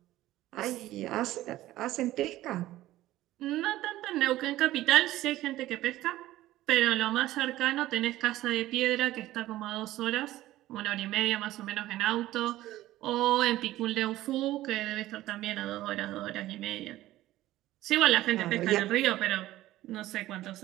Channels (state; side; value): quieter; left; 15.5 dB